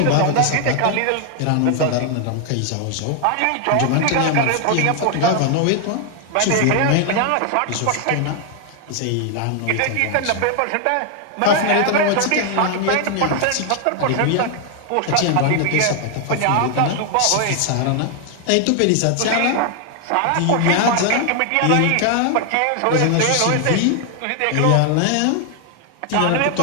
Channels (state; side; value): different; both; correlation 0.00